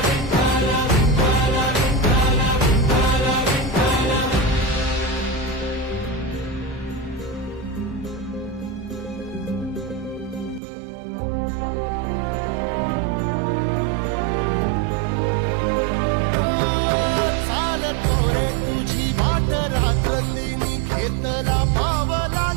रात्रंदिनी घेतला पावला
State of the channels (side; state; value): left; drops out; at 10.6 s